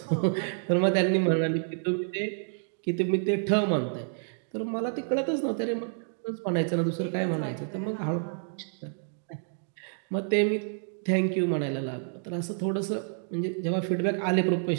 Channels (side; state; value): left; silent; digital silence